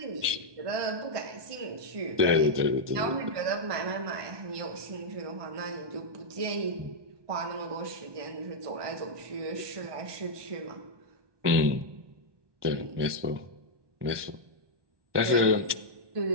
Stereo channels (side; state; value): left; late; 1.2 ms